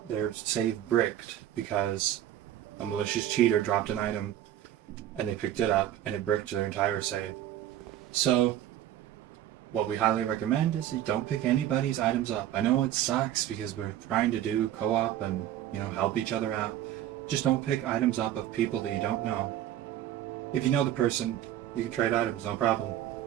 their save bricked because a malicious cheater dropped an item and they picked it up and it bricked their entire save. So what we highly recommend is you don't pick anybody's items up. I know it sucks because we're trying to do co-op and, help each other out. Just don't pick items up of people that you don't know. If you know the person, you can trade items, no problem.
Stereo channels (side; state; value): left; quieter; 12.1 dB